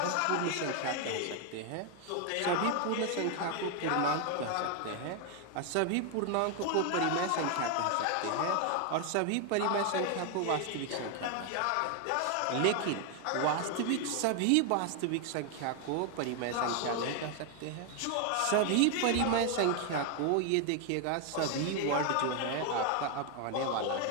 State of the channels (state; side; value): different; both; correlation 0.01